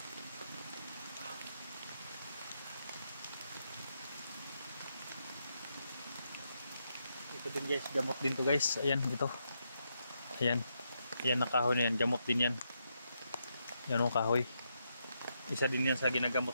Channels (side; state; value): both; inverted; correlation -0.81